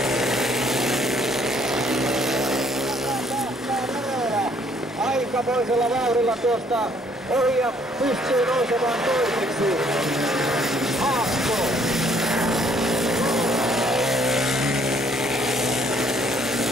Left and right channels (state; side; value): normal; both; correlation 0.63